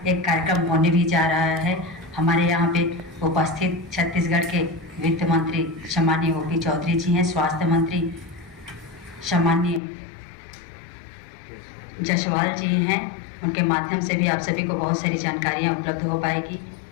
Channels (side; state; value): right; drops out; at 9.8 s